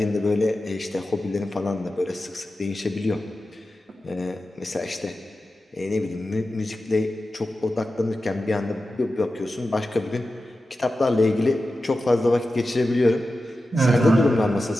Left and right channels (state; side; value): normal; both; correlation 0.93